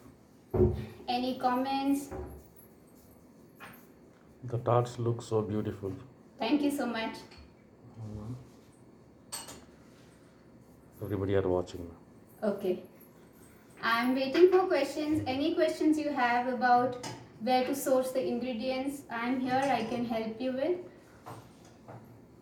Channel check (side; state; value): both; identical; correlation 1.00